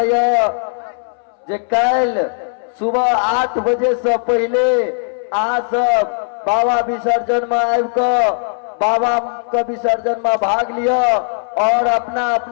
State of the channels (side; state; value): right; silent; 68 dB below the other